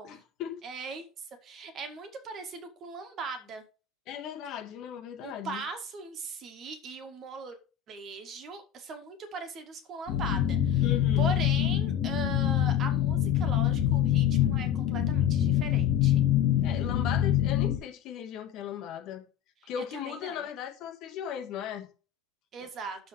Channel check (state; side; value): quieter; right; 9.1 dB